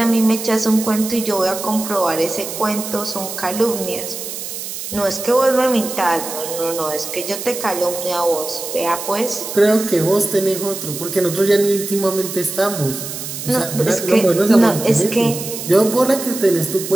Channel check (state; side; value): noise; right; hiss, 8 dB below the sound